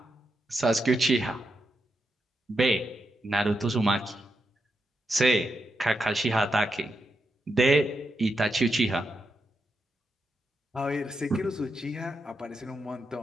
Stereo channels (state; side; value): normal; both; correlation 0.85